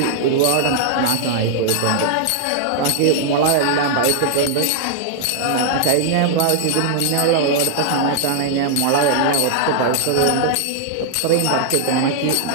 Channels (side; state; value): both; different; correlation -0.01